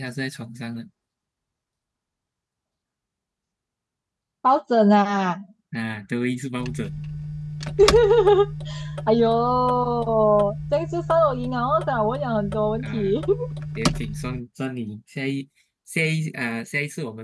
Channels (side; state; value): both; identical; correlation 1.00